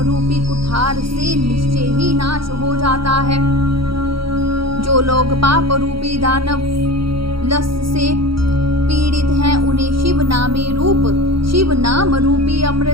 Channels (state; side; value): late; left; 0.74 ms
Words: कुठार से निश्चय ही नाश हो जाता है। जो लोग पाप रूपी दानव लस से पीड़ित हैं, उन्हें शिव नाम रूपी